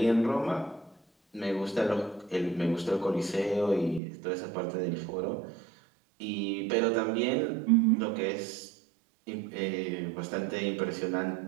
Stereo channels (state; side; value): drops out; left; at 4.0 s